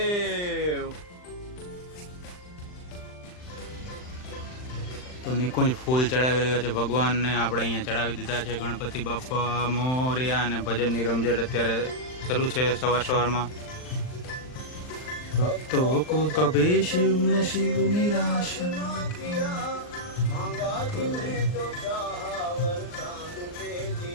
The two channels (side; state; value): right; late; 39 ms